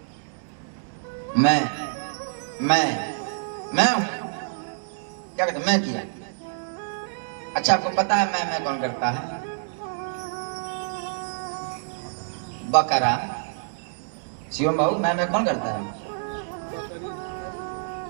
मैं हूं। क्या कहते? मैं किया। अच्छा, आपको पता है मैं कौन करता है? बकरा। शिवम बाबू, मैं कौन करता है?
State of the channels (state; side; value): silent; left; digital silence